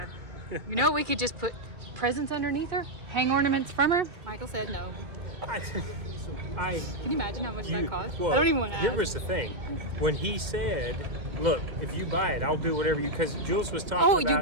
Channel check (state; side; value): late; left; 2.2 ms